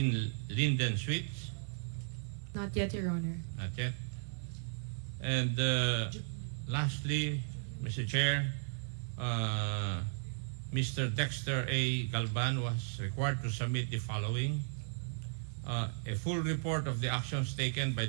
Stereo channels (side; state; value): left; silent; digital silence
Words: Linden Suites. Not yet, Your Honor. Not yet. And lastly, Mr. Chair, Mr. Dexter A. Galban was required to submit the following: a full report of the actions taken by